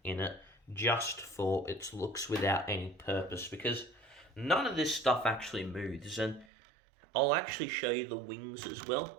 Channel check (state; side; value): drops out; left; at 6.5 s